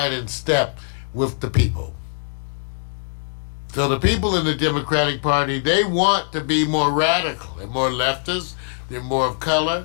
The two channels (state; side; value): silent; right; digital silence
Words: in step with the people. So the people in the Democratic Party, they want to be more radical and more leftist. They're more of